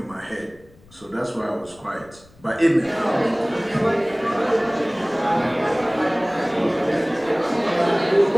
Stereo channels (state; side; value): noise; left; rumble, 27 dB below the sound